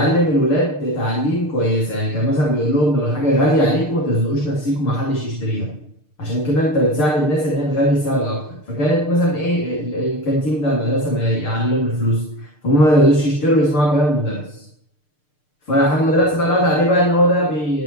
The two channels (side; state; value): right; late; 6.7 ms